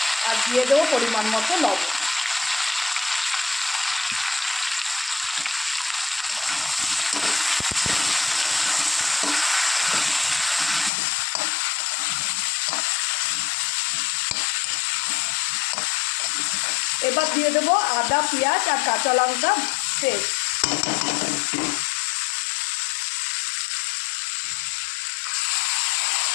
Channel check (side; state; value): right; drops out; at 10.9 s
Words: আর দিয়ে দেবো পরিমাণ মতো লবণ। এবার দিয়ে দেবো আদা, পেঁয়াজ আর কাঁচা লঙ্কা পেস্ট।